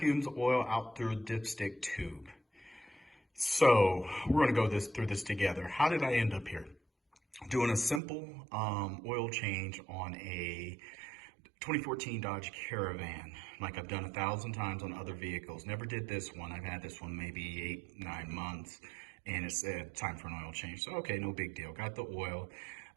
oil out through a dipstick tube. So we're gonna go through this together. How did I end up here? Doing a simple oil change on a 2014 Dodge Caravan, like I've done 1,000 times on other vehicles. Never did this one. I've had this one maybe 8-9 months, and it's time for an oil change. So okay, no big deal. Got the oil.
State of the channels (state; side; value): drops out; left; at 8.0 s